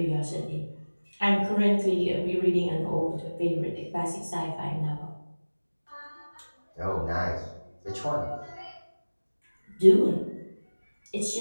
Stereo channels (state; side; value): inverted; both; correlation -1.00